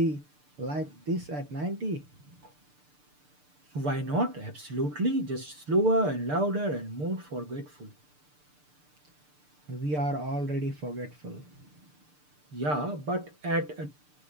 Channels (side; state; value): left; late; 6.7 ms